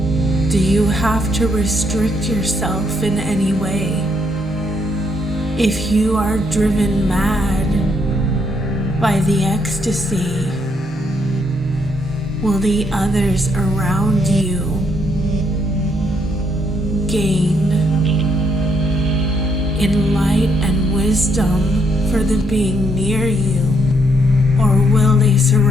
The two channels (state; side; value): normal; both; correlation 0.73